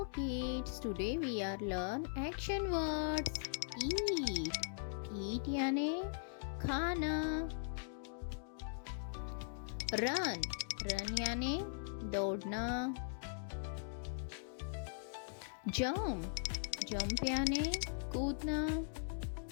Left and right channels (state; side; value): silent; right; digital silence